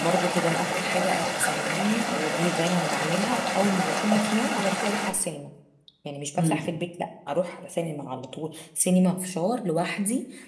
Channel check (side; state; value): both; identical; correlation 1.00